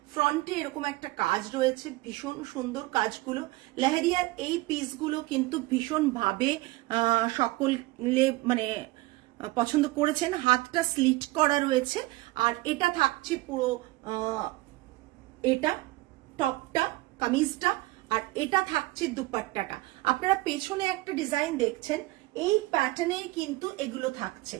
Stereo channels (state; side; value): quieter; left; 19.9 dB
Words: ফ্রন্টে এরকম একটা কাজ রয়েছে, ভীষণ সুন্দর কাজগুলো। লেহেরিয়ার এই পিসগুলো কিন্তু ভীষণ ভাবে সকলে মানে পছন্দ করেছেন। হাতটা স্লিট করা রয়েছে। আর এটা থাকছে পুরো এটা টপটা, কামিজটা, আর এটা থাকছে দুপাট্টাটা। আপনারা পেছনে একটা ডিজাইন দেখছেন, এই প্যাটার্নেই কিন্তু এগুলো থাকছে।